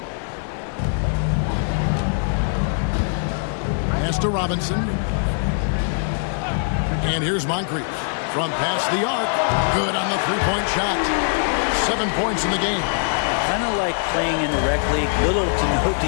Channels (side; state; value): right; silent; digital silence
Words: Pass to Robinson. And here's Moncrief. From past the arc. Good on the 3-point shot. 7 points in the game. Kind of like playing in the rec league, little to no